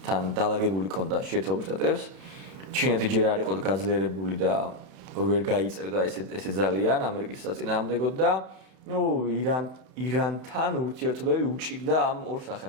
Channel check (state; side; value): late; left; 31 ms